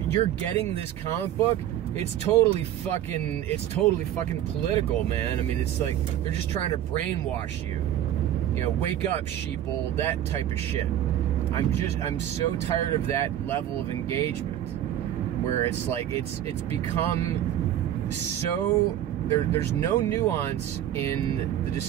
getting this comic book, it's totally fucking political, man. I mean, it's like they're just trying to brainwash you. Wake up, sheeple, that type of shit. I'm so tired of that level of engagement, where it's like it's become so there's no nuance in the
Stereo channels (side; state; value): left; quieter; 11.7 dB